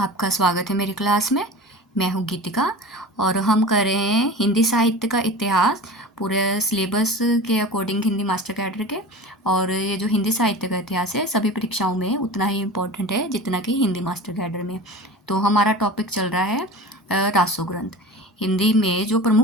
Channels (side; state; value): both; normal; correlation 0.34